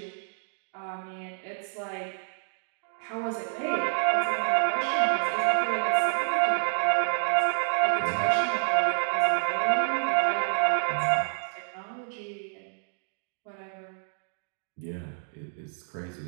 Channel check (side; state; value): left; silent; digital silence